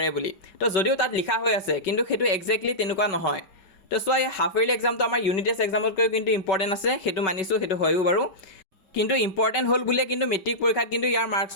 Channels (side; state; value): right; late; 5.3 ms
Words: বুলি। তো যদিও তাত লিখা হৈ আছে কিন্তু সেইটো একজেক্টলি তেনেকুৱা নহয়। তো চোৱা এই হাফ ইয়াৰলি এক্সামটো আমাৰ ইউনিট টেষ্ট এক্সামতকৈ কিন্তু ইম্পৰ্টেণ্ট আছে, সেইটো মানিছোঁ, সেইটো হয়ও বাৰু। কিন্তু ইম্পৰ্টেণ্ট হ'ল বুলিয়ে কিন্তু মেট্ৰিক পৰীক্ষাত কিন্তু ইয়াৰ